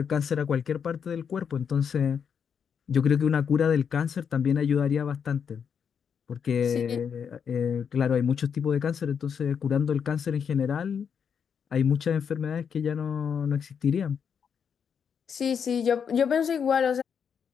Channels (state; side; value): quieter; right; 7.1 dB